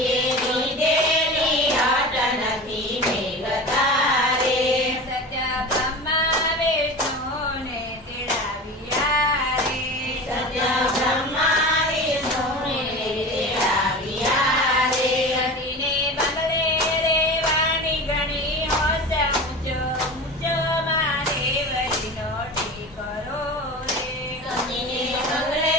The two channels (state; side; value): normal; both; correlation 0.31